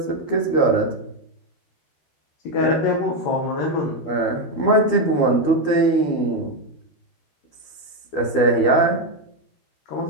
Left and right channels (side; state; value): right; late; 12 ms